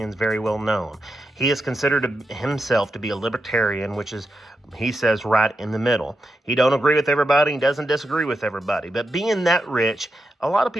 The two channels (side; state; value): both; normal; correlation 0.87